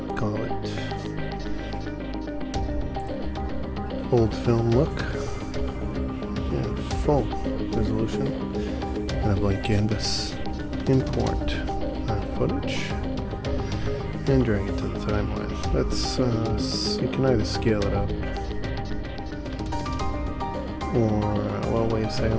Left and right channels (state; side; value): identical; both; correlation 1.00